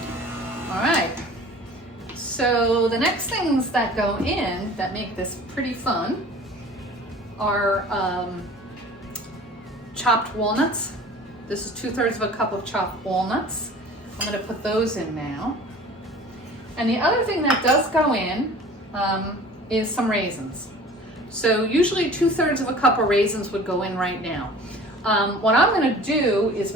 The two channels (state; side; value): normal; both; correlation 0.44